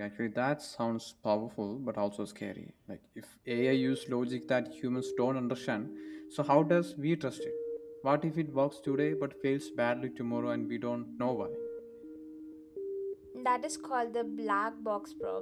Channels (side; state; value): both; identical; correlation 1.00